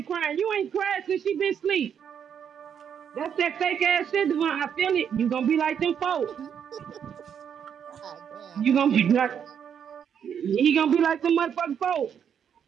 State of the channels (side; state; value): left; quieter; 8.1 dB